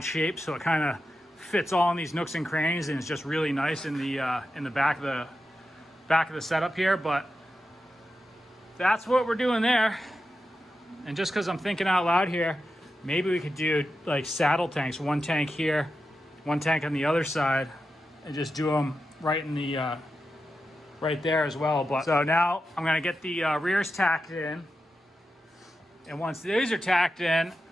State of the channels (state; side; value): normal; both; correlation 0.90